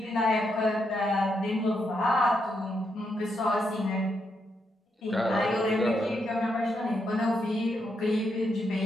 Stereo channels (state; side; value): normal; both; correlation 0.80